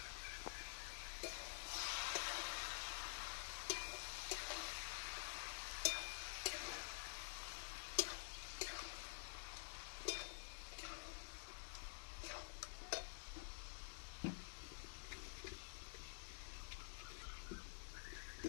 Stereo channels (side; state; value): right; silent; digital silence